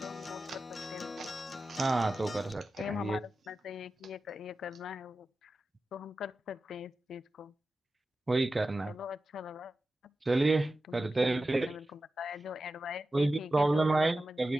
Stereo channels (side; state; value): both; normal; correlation 0.93